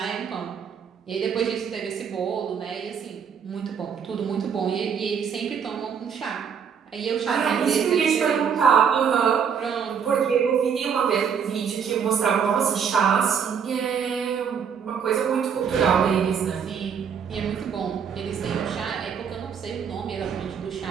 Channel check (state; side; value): quieter; left; 7.1 dB